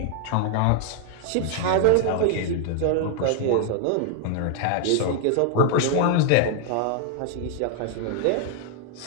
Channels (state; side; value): different; both; correlation 0.01